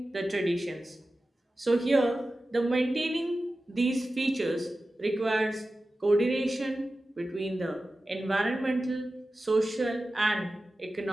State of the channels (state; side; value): normal; both; correlation 0.94